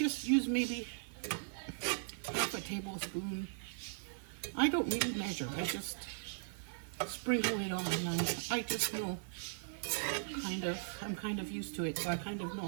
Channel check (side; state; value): left; silent; 52 dB below the other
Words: use maybe half a tablespoon. I don't really measure. I just sprinkle it on, and I just know I'm kind of used to it, so I kind of know